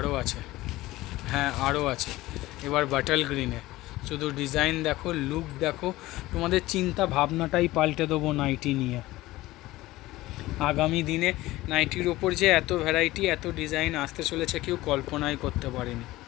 হ্যাঁ আরও আছে। এবার বাটল গ্রিনে, শুধু ডিজাইন দেখো, লুক দেখো, তোমাদের চিন্তা ভাবনাটাই পাল্টে দেবো নাইটি নিয়ে। আগামী দিনে নাইটির ওপর যে এত ভ্যারাইটি, এত ডিজাইন আসতে চলেছে কেউ কল্পনাই করতে পারেনি,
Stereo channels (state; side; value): quieter; right; 17.8 dB